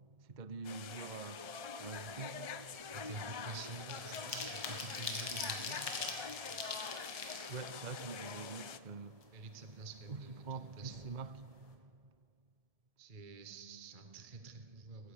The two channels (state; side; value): late; left; 1.7 ms